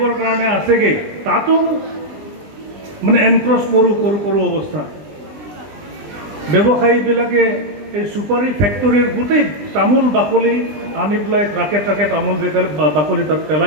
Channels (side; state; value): left; late; 20 ms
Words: কাৰণে আছেগৈ, তাতো মানে এনক্ৰচ কৰোঁ অৱস্থা। ব্যৱসায়ীবিলাকে এই চুপাৰী ফেক্টৰীৰ গোটেই তামোল বাকলি আনি পেলাই ট্ৰাকে তামোল বাকলি তাত